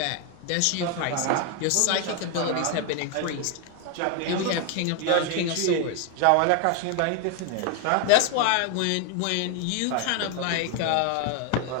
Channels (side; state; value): both; different; correlation 0.01